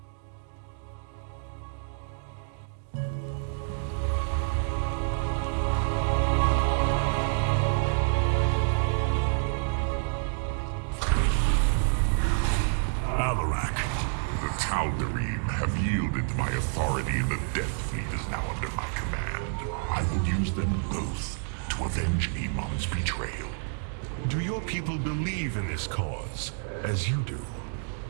Alarak. The Tal'Darim have yielded to my authority, and the Death Fleet is now under my command. I will use them both to avenge Amon's betrayal. Do your people believe in this cause, as you do?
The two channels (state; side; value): silent; left; 58 dB below the other